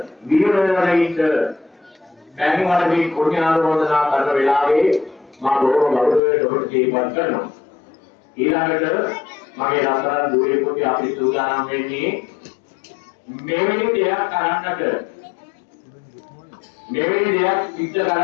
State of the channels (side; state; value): right; drops out; at 6.2 s